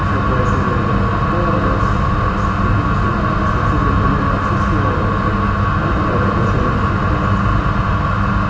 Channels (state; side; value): identical; both; correlation 1.00